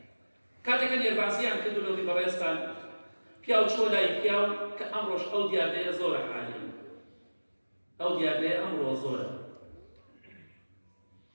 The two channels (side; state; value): both; inverted; correlation -1.00